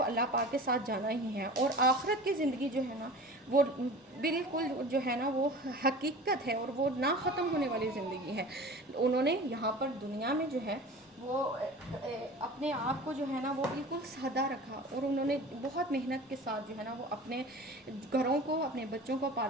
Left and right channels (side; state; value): both; normal; correlation 0.38